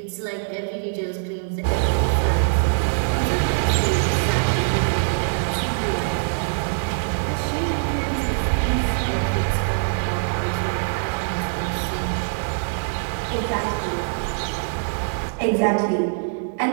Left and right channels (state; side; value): silent; left; 63 dB below the other